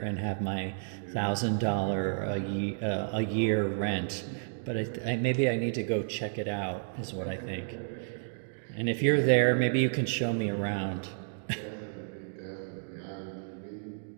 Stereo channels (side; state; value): left; silent; digital silence